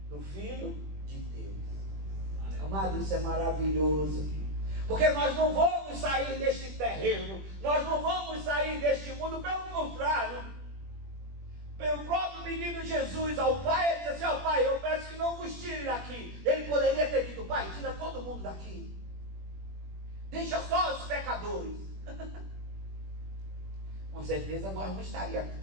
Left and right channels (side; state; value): left; late; 21 ms